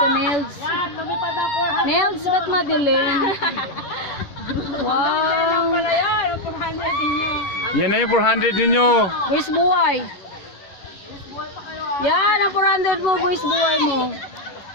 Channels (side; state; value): right; late; 11 ms